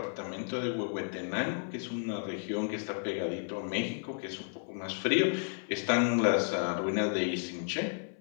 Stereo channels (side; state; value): right; silent; 56 dB below the other